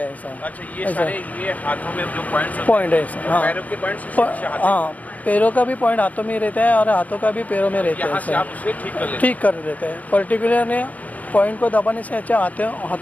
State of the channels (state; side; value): late; right; 0.075 ms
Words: है ऐसा। अच्छा, ये सारे ये हाथों में जो पॉइंट है ऐसा। हाँ, पैरों के पॉइंट्स? हाँ, पैरों का भी पॉइंट हाथों में रहता है और हाथों का भी पैरों में रहता यहाँ से है, आप उसे ठीक कर लेते हैं? ठीक कर देते हैं। पर्टिकुलर ने पॉइंट को दबाने से अच्छा